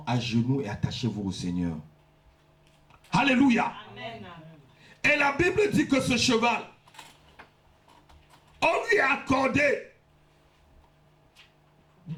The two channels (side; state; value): both; identical; correlation 1.00